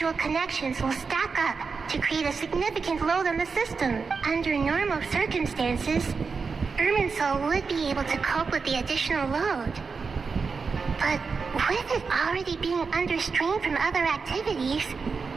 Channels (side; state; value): left; quieter; 5.0 dB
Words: connections will stack up to create a significant load on the system. Under normal circumstances, Irminsul would be able to cope with the additional load. But with it already being under strain from other activities,